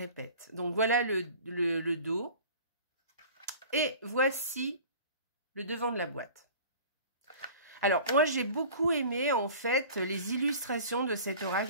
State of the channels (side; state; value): both; inverted; correlation -0.43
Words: Donc, voilà le dos. Et voici le devant de la boîte. Alors, moi, j'ai beaucoup aimé, en fait, les illustrations de cet oracle.